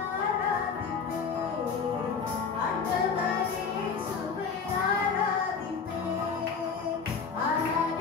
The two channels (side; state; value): right; quieter; 5.6 dB